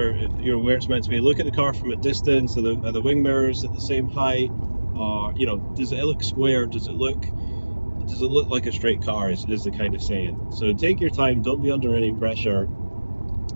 it's meant to be. Look at the car from a distance. Are the wing mirrors at the same height? Does it look square? Does it look like a straight car? Is the kind of saying. So take your time. Don't be under any pressure.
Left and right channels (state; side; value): inverted; both; correlation -1.00